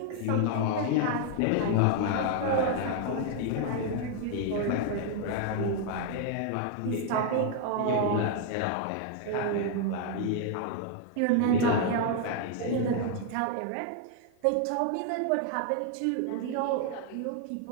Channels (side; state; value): both; different; correlation 0.00